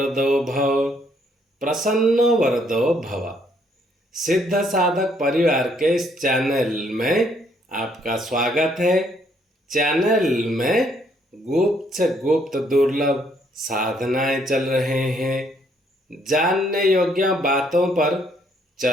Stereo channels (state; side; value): normal; both; correlation 0.69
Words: भव, प्रसन्नो वरदो भव। सिद्ध साधक परिवार के इस चैनल में आपका स्वागत है। चैनल में गुप्त से गुप्त दुर्लभ साधनाएं चल रहे हैं। जानने योग्य बातों पर